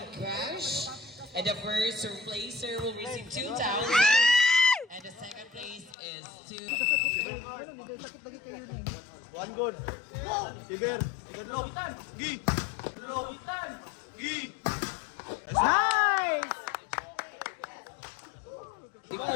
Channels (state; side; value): drops out; right; at 6.0 s